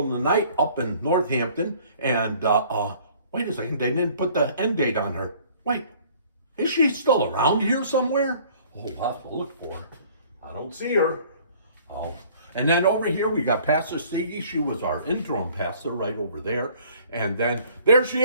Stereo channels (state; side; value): inverted; both; correlation -0.55